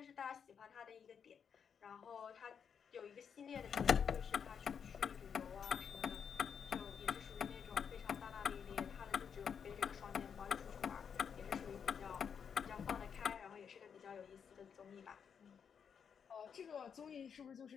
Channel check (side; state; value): right; quieter; 7.2 dB